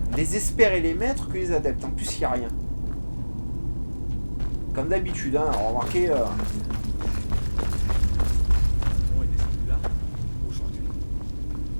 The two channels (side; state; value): both; inverted; correlation -1.00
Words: les experts et les maîtres que les adeptes. En plus, il n'y a rien. Comme d'habitude, hein, remarquez. On est descendu là aujourd'hui.